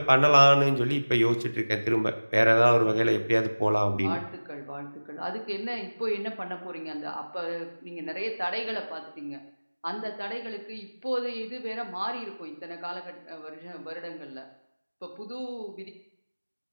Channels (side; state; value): both; inverted; correlation -1.00